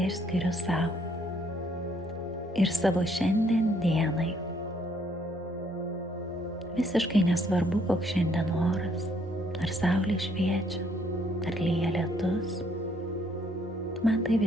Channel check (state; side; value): normal; both; correlation 0.67